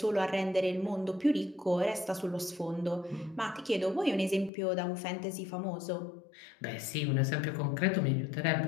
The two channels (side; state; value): right; drops out; at 4.5 s